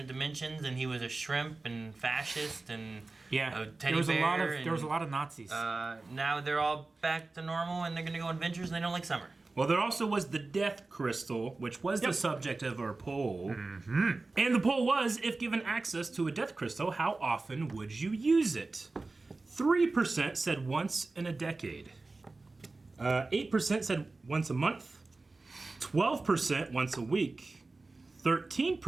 dimensions, and he was a shrimp and fascist and a teddy bear. There was a lot of Nazis. Now they're all back to normal and they're gonna go on adventures and they don't like summer. Well, there also was the Death Crystal, which was the subject of our poll. And the poll was, if given access to a Death Crystal, how often would you use it? 3% said once in a decade. 8% said once a month. 12% once a week.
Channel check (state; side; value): quieter; left; 3.5 dB